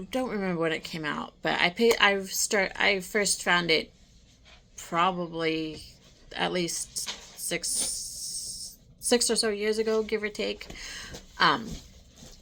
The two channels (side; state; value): both; identical; correlation 1.00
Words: remember when it came out, but I first found it probably at least six or so years ago, give or take.